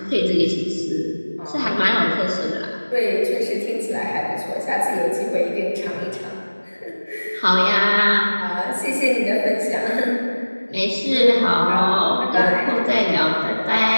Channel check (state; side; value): inverted; both; correlation -1.00